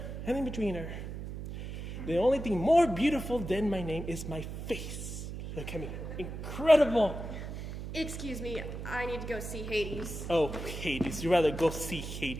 and in betweener. The only thing more beautiful than my name is my face. Look at me. Incredible. Excuse me, I need to go see Hades. Oh, Hades. You'd rather go see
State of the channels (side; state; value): right; noise; hum, 7 dB below the sound